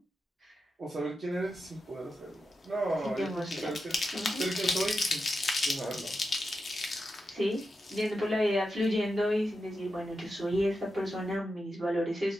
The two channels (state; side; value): normal; both; correlation 0.88